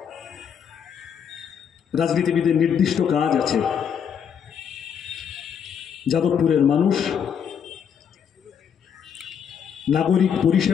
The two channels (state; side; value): quieter; right; 7.7 dB